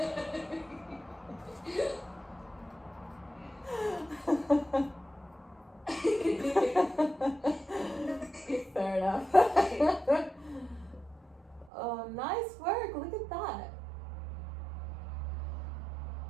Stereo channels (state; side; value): drops out; left; at 11.7 s